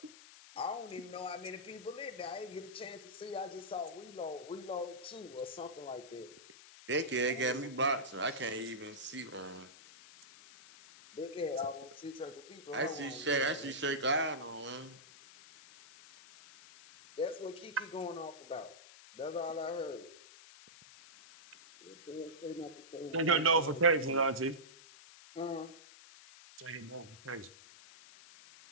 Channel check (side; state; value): left; noise; hiss, 19 dB below the sound